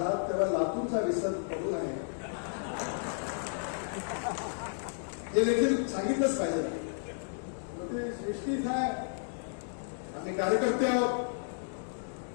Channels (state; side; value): silent; right; digital silence